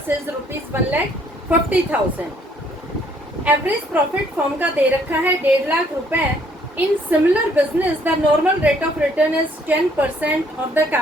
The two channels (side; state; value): both; normal; correlation 0.64